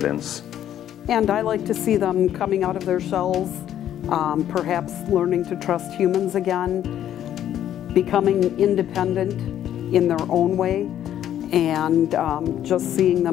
And I like to see them coming out of their shells, perhaps learning to trust humans again, becoming independent in their own way, and just seeing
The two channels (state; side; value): quieter; right; 11.0 dB